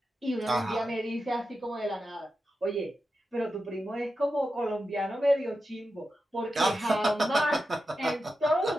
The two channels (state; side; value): normal; both; correlation 0.90